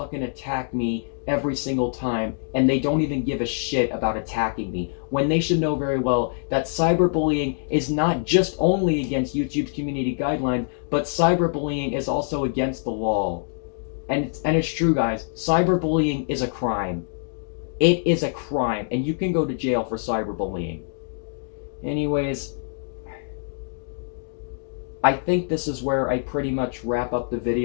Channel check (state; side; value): silent; right; digital silence